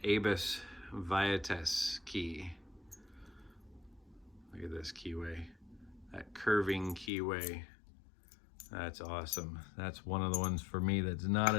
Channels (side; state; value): right; drops out; at 7.1 s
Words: Abus Viates key. Look at this keyway, that curving keyway. That's awesome. That's one of the ones for me that's not